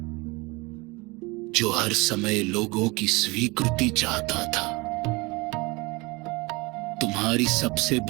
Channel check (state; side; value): quieter; left; 25.0 dB